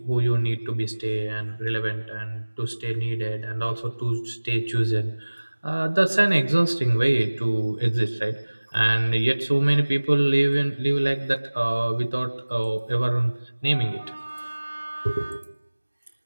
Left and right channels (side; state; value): both; inverted; correlation -1.00